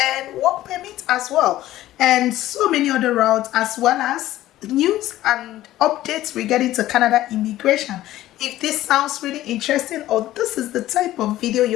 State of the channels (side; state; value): right; quieter; 14.7 dB